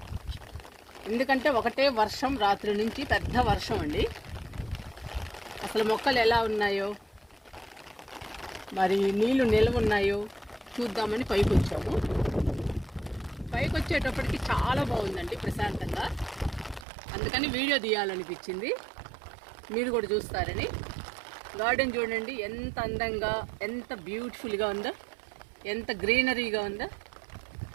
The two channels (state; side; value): drops out; left; at 16.9 s